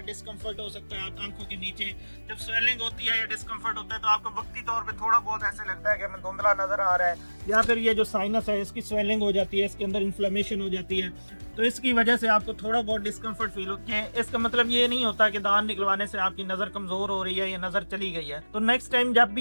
डिस्कम्फर्ट हो सकता है आंखों के नीचे। जब स्वेलिंग होती है या डिस्कम्फर्ट होता है तो आपको वक्ती तौर पे थोड़ा बहुत ऐसे लगता है कि हमें धुंधला नजर आ रहा है, या फिर ये जो साइनस है इसकी स्वेलिंग हो जाती है, इसके अंदर इन्फ्लेमेशन हो जाती है, तो इसकी वजह से आपको थोड़ा बहुत डिस्कम्फर्ट फील होती है। इसका मतलब ये नहीं होता कि दांत निकलवाने से आपकी नज़र कमज़ोर हो रही है या नज़र चली गई है। तो नेक्स्ट टाइम जब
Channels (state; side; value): inverted; both; correlation -1.00